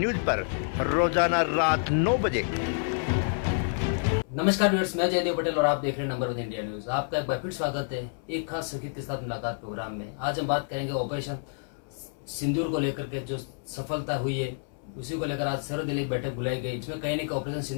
पर रोजाना रात 9 बजे। नमस्कार व्यूअर्स, मैं जयदेव पटेल और आप देख रहे हैं नंबर 1 इंडिया न्यूज। आपका एक बार फिर स्वागत है एक खास शख्सियत के साथ मुलाकात प्रोग्राम में। आज हम बात करेंगे ऑपरेशन सिंदूर को लेकर के जो सफलता हुई है उसी को लेकर आज सर्वदलीय बैठक बुलाई गई, जिसमें कहीं न कहीं ऑपरेशन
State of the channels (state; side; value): silent; right; 59 dB below the other